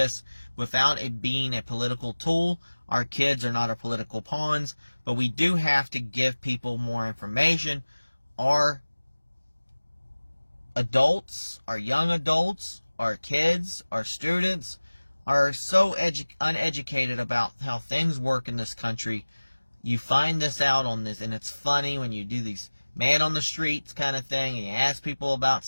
without it being a political tool. Our kids are not our political pawns, but we do have to give people more information. Our adults, our young adults, our kids, our students are so uneducated about how things work in this country. You find this out on this, and it's funny when you do these man on the streets kind of thing, and you ask people about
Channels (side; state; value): both; inverted; correlation -1.00